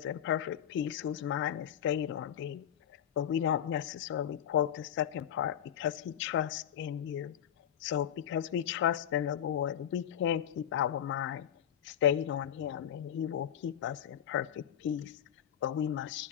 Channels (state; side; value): quieter; right; 9.9 dB